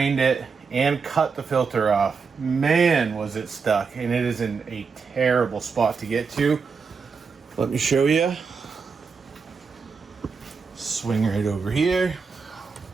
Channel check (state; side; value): quieter; left; 5.3 dB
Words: it and cut the filter off. Man, was it stuck, and it is in a terrible spot to get to. Let me show you. Swing right over here.